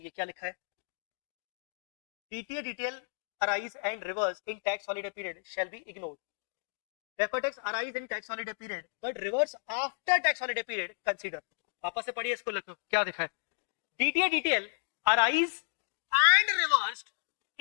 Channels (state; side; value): silent; right; digital silence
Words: ये क्या लिखा है? DTA DTL arise and reverse in tax holiday period shall be ignored. Deferred tax arise in tax holiday period but reverse after tax holiday period consider. वापस से पढ़िए इसको, लिखो क्या दिखा है। DTA DTL arise and reversed